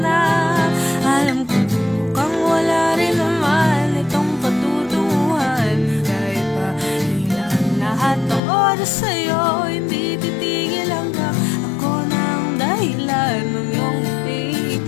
alam ko mukhang wala rin naman itong patutunguhan. Kahit pa ilang lahat ng oras sa'yo, hindi titigil hanggang ako na ang dahilan ng iyong ngiti.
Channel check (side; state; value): right; drops out; at 8.4 s